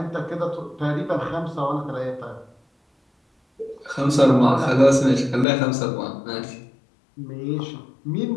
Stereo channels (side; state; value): right; drops out; at 5.5 s